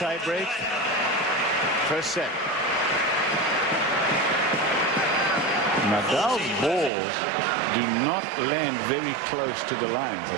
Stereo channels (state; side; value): drops out; left; at 6.9 s